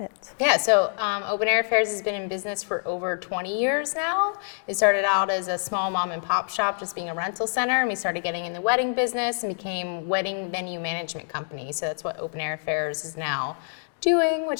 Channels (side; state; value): right; silent; digital silence